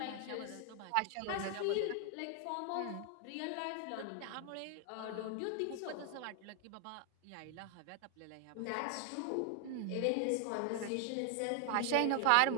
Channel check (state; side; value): different; both; correlation 0.00